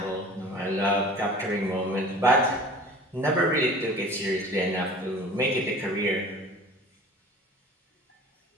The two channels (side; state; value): both; normal; correlation 0.43